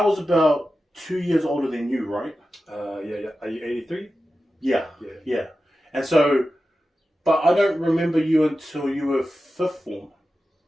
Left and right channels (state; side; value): normal; both; correlation 0.93